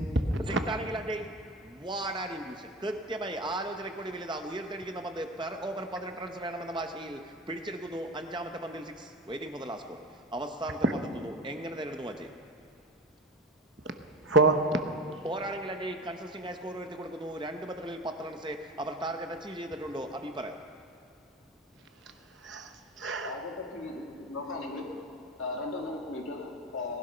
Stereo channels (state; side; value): normal; both; correlation 0.32